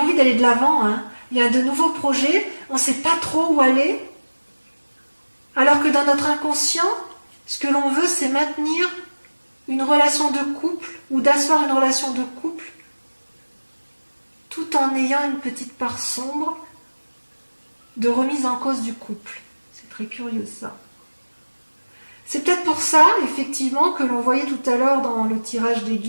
d'aller de l'avant, hein. Il y a de nouveaux projets, on ne sait pas trop où aller, alors que dans notre inconscient, ce que l'on veut, c'est maintenir une relation de couple, ou d'asseoir une relation de couple, tout en ayant une petite part sombre de remise en cause du couple. C'est très curieux ça. C'est peut-être pour ça, effectivement, que l'on voyait tout à l'heure dans le tirage des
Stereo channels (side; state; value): both; inverted; correlation -1.00